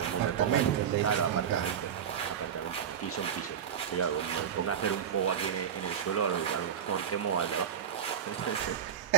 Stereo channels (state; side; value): quieter; left; 8.5 dB